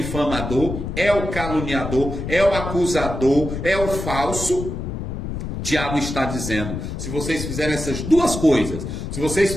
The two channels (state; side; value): noise; left; rumble, 5 dB below the sound